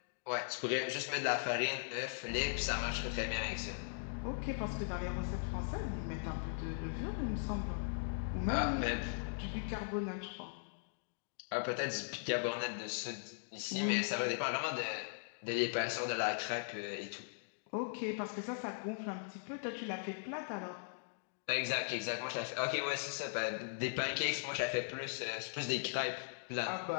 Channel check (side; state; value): right; silent; digital silence